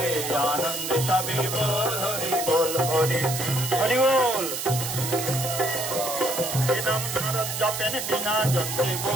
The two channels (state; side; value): noise; right; hiss, 4 dB below the sound